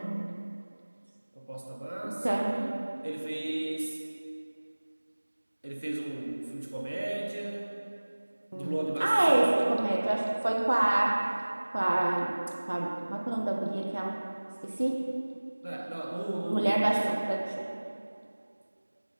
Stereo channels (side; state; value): both; inverted; correlation -1.00